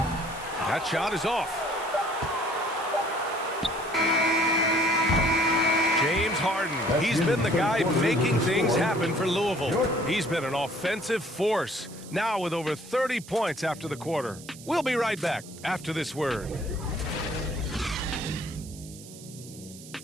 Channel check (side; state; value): right; noise; hiss, 17 dB below the sound